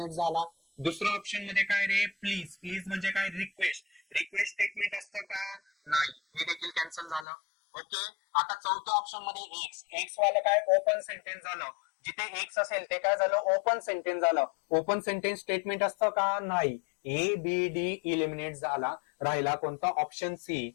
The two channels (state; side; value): drops out; right; at 7.2 s